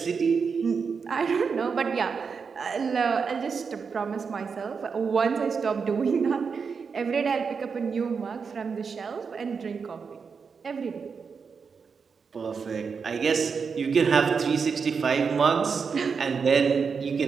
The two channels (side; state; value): left; quieter; 5.6 dB